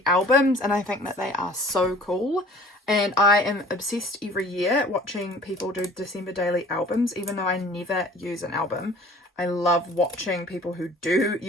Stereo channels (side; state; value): both; normal; correlation 0.48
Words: albums, and I think that they are so cool. And I am obsessed every year watching people do December daily albums, even though I never use an album. I love watching people who do